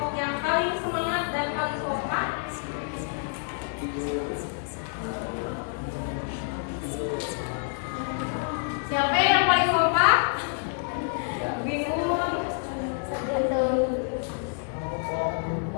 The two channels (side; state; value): right; silent; 60 dB below the other